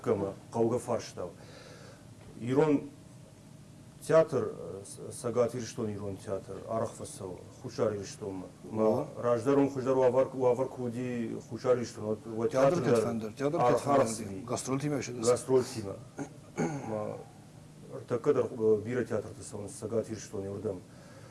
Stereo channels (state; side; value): identical; both; correlation 1.00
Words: қауға фарштау. Ирон театр, сагат ирштон ирон театр, арахфасау, хушар ирштон. Раждарон хушар уавар куди хушар ирштон. Театр Кетфендер, гастрол тима еще дес. Гастрол тима. Такадар бира театр тесауны, сагат ирштон ирдам.